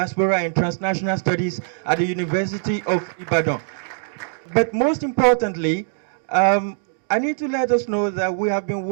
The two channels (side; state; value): left; silent; digital silence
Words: and transnational studies at the University of Ibadan. But most importantly, I need to let us know that we have been